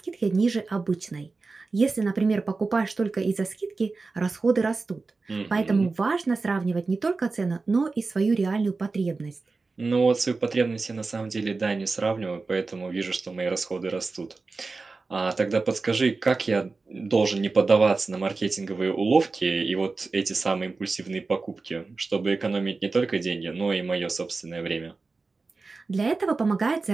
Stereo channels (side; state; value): left; quieter; 3.9 dB